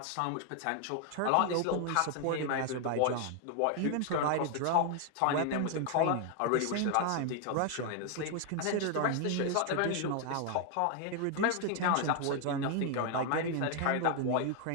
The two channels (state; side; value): different; both; correlation 0.00